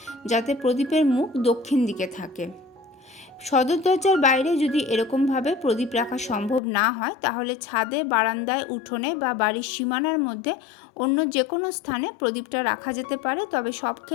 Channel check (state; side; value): drops out; right; at 6.6 s